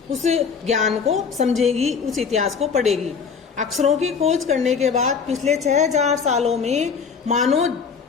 उस ज्ञान को समझेगी, उस इतिहास को पढ़ेगी। अक्षरों की खोज करने के बाद पिछले 6000 सालों में मानव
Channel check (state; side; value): quieter; right; 5.9 dB